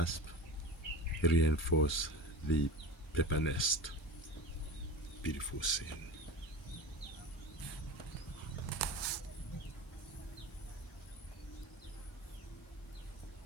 reinforce the paper nest. Beautiful scene.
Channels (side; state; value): both; normal; correlation 0.31